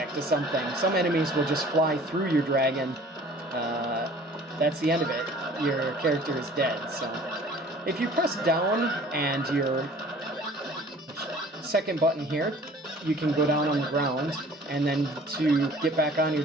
to something, some enemies will just fly through your dragon. That's the end of it. Your character is dead. So if you press down and your second button here, you can go down on the ground, and then to get back on your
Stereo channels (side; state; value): both; normal; correlation 0.49